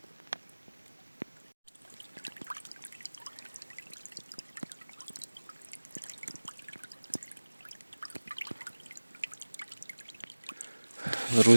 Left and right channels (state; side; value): inverted; both; correlation -1.00